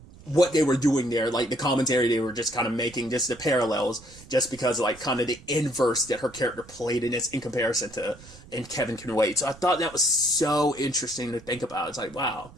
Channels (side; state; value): right; noise; rumble, 21 dB below the sound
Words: what they were doing there, like the commentary they were just kind of making, just the parallels, just because like kind of the inverse that her character played in this in comparison to in Kevin Can Wait. So I thought that was so interesting to think about. It's like, wow.